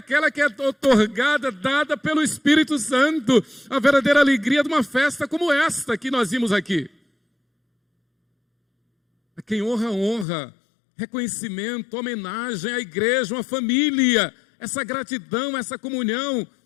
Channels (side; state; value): right; drops out; at 10.2 s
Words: que é otorgada, dada pelo Espírito Santo. A verdadeira alegria de uma festa como esta que nós vimos aqui. A quem honra, honra. Reconhecimento, homenagem à igreja, uma família. Essa gratidão, essa comunhão.